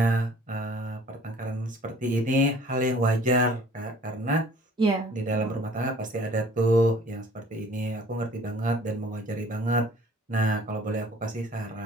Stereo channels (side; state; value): both; normal; correlation 0.52